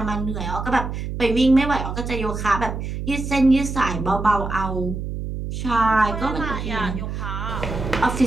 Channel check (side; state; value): right; noise; hum, 5 dB below the sound